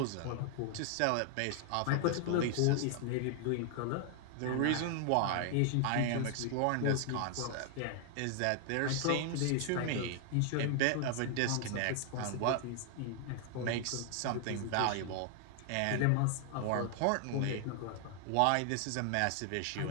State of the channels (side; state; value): both; different; correlation 0.00